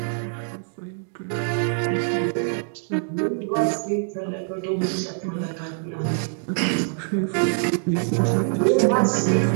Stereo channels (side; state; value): left; silent; digital silence